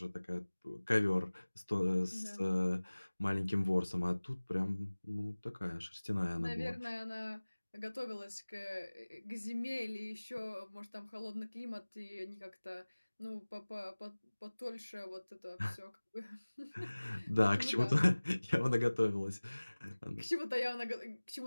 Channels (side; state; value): both; inverted; correlation -1.00